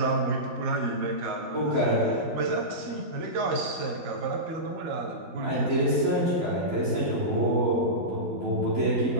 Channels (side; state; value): left; late; 12 ms